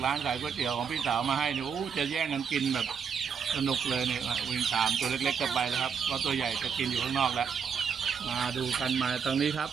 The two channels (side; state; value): left; quieter; 6.7 dB